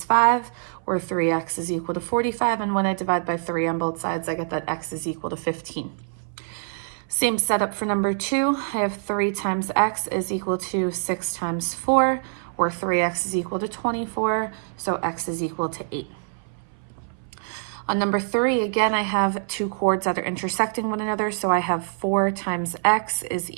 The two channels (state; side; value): silent; left; 60 dB below the other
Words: 5, or 3x is equal to 45, and when I divide by 3 on both sides, I get that x is equal to 15. Same setup for number two. I have 3 times x is equal to 6 times 4, or 3x is equal to 24, so x is equal to 8. On number three, again, I have two chords that are intersecting one another. So I have 4 times x is